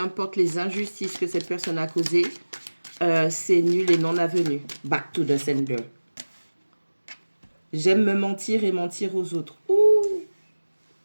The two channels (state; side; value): inverted; both; correlation -1.00